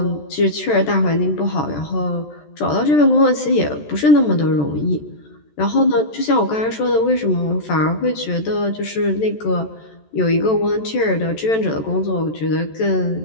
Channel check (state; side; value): late; right; 14 ms